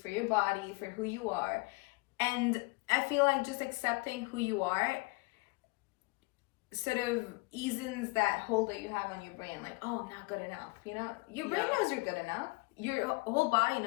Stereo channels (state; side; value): quieter; right; 25.8 dB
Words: your body, for who you are? And I feel like just accepting who you are sort of eases that hold that you have on your brain, like, oh, I'm not good enough. You know, your brain knows you're good enough. Your whole body